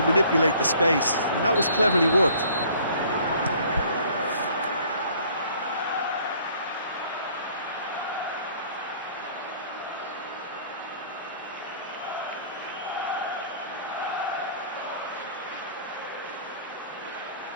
manipulate the space, and that was cleverly worked.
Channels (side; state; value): both; inverted; correlation -0.55